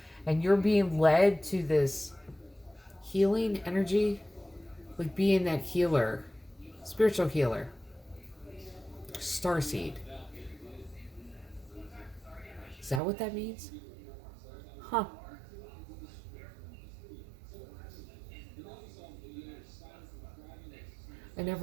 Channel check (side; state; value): left; drops out; at 13.0 s